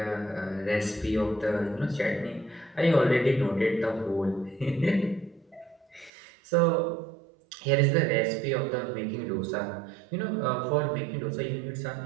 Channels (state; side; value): drops out; left; at 6.1 s